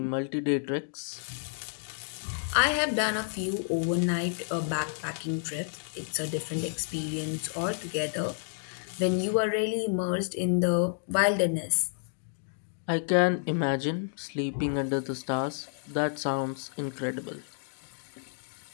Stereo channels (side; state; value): right; silent; digital silence